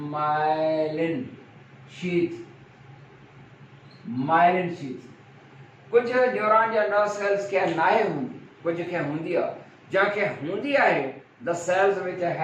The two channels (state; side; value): identical; both; correlation 1.00